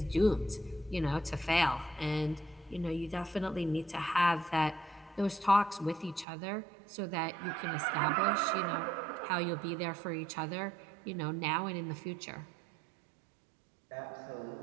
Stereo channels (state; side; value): drops out; left; at 6.2 s